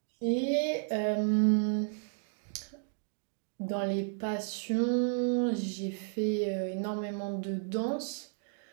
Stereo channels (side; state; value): left; silent; digital silence